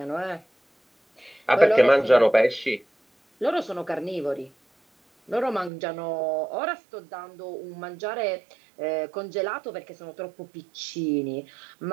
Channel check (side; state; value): left; drops out; at 5.7 s